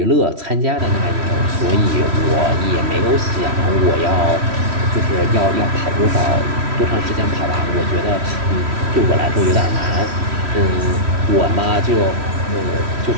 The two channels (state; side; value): late; left; 3.1 ms